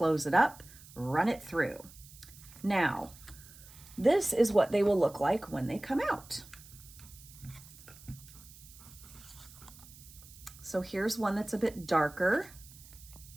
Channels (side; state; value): right; noise; hiss, 20 dB below the sound